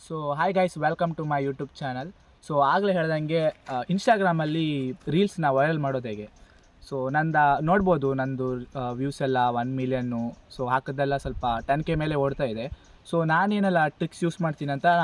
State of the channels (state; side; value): identical; both; correlation 1.00